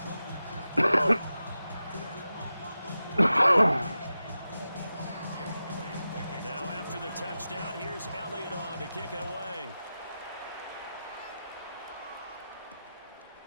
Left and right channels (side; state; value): both; inverted; correlation -0.92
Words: Now after the touchdown, here's Elliott on to kick it away.